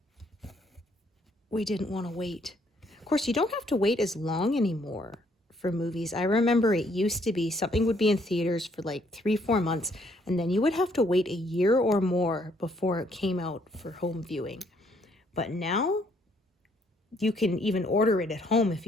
We didn't want to wait. Of course, you don't have to wait as long anymore for movies. I remember it used to be something would be in theaters for like 3-4 months, and then you would have to wait a year or more before it came out for home viewing. But now you can even order it at home if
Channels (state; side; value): normal; both; correlation 0.68